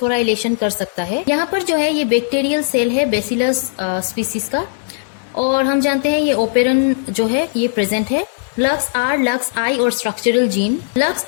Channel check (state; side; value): silent; right; digital silence